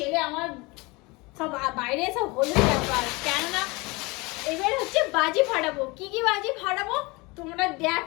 আমার সব বাইরে সব হলো ব্যাপার, কেননা এবার হচ্ছে বাজি ফাটাবো। কি কি বাজি ফাটাবো তোমরা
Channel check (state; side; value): quieter; right; 25.3 dB